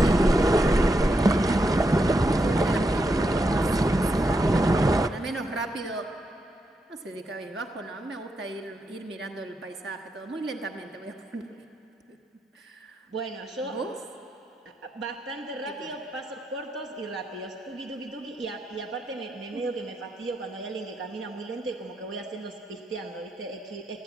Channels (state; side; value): normal; both; correlation 0.83